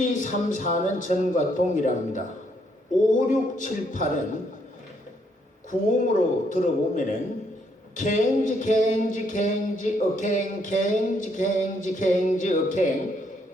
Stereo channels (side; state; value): both; normal; correlation 0.72